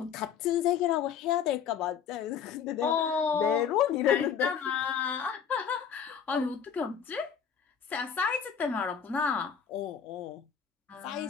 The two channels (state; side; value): quieter; right; 7.7 dB